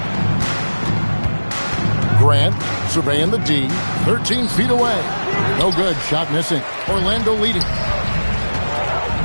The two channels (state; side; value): inverted; both; correlation -1.00